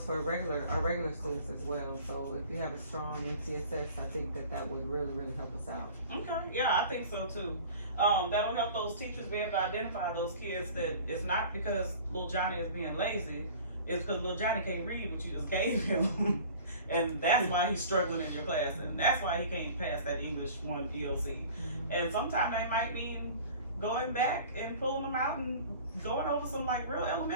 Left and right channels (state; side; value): inverted; both; correlation -0.44